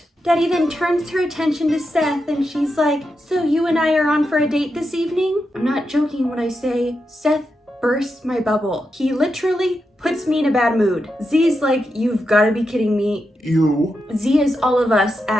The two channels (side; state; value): both; normal; correlation 0.87